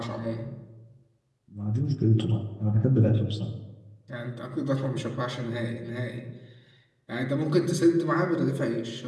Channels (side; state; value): both; identical; correlation 1.00